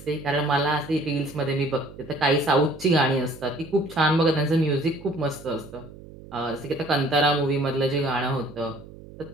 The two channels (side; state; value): right; noise; hum, 18 dB below the sound